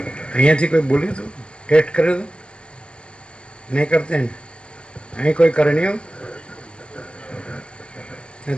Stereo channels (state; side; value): late; right; 0.052 ms